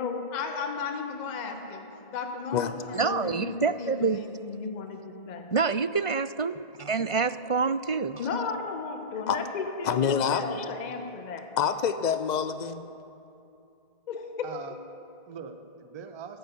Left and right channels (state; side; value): late; right; 2.0 ms